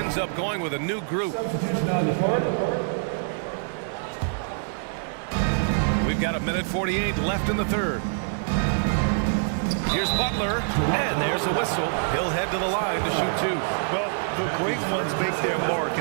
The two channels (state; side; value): silent; left; digital silence